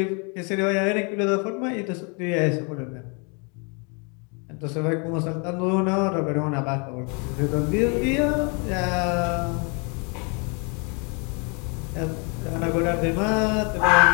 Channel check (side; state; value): right; quieter; 34.2 dB